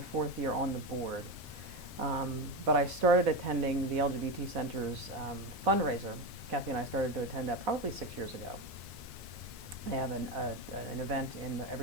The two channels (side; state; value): both; normal; correlation 0.17